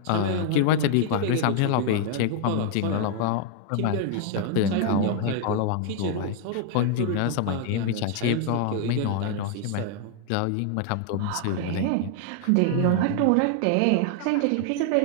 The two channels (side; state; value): both; different; correlation 0.00